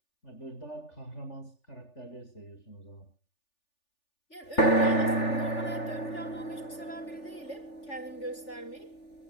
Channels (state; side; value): late; right; 3.4 ms